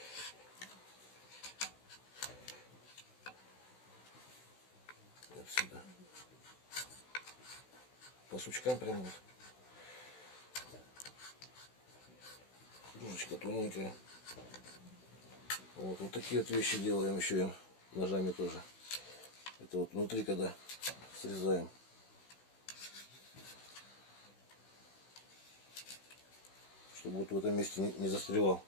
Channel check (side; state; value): right; late; 16 ms